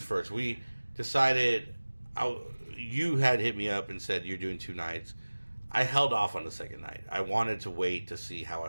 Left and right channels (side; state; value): both; inverted; correlation -1.00